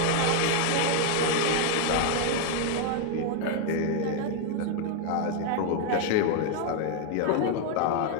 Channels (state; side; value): different; both; correlation 0.00